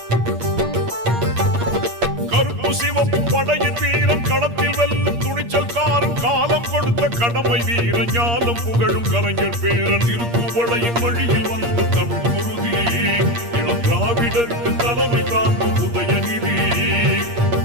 கருப்பு சிவப்பு படையின் வீரன் களத்தில் வெல்லும் துணிச்சல்காரன் காலம் கொடுத்த கடமை வீரன் ஞானம் புகழும் கலைஞர் பேரன் திருக்குவளையின் வழியில் வந்த தமிழ் குருதி இளம் திராவிடருக்கு தலைமை தாங்கும் உதயநிதி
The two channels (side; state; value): left; late; 8.5 ms